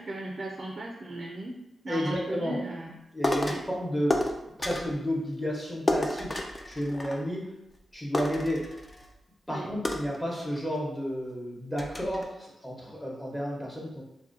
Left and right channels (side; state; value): both; normal; correlation 0.92